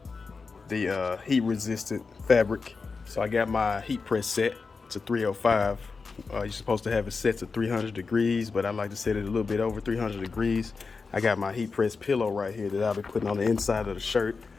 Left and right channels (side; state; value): right; quieter; 4.6 dB